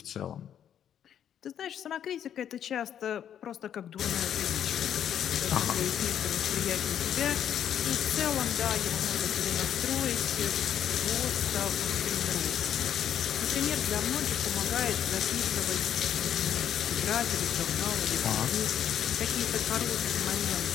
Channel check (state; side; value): quieter; right; 9.6 dB